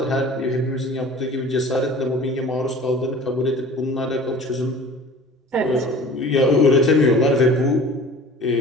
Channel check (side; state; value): both; normal; correlation 0.43